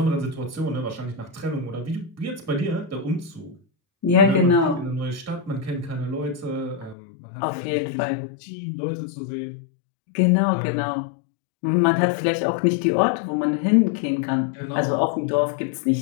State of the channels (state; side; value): drops out; right; at 7.0 s